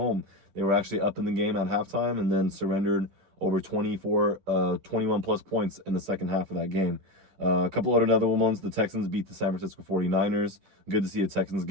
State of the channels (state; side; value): late; left; 11 ms